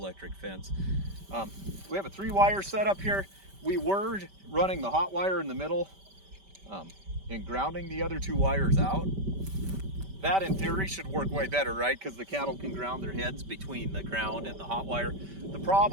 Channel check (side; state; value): left; late; 5.1 ms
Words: fence. We have a 3 wire setup here. We were running the hot wire in the middle and grounding the other 2 wires out. That in theory should work way better, right? Because the cattle can ground their heads between the ground and the hot wire. The